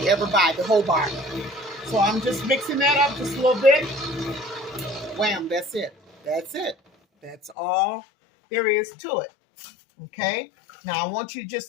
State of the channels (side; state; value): right; drops out; at 7.6 s